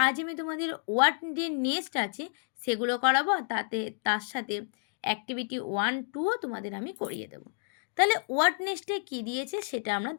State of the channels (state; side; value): silent; right; digital silence